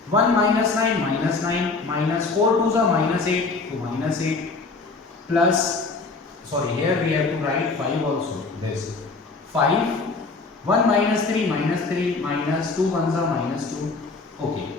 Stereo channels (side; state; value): right; quieter; 4.0 dB